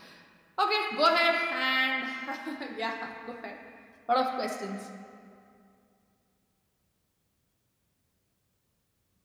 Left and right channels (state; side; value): identical; both; correlation 1.00